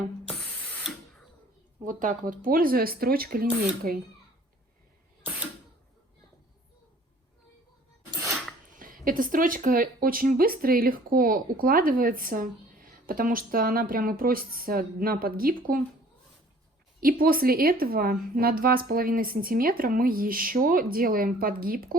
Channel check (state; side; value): normal; both; correlation 0.53